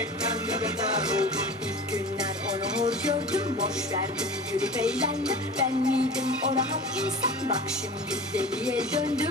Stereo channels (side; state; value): both; normal; correlation 0.36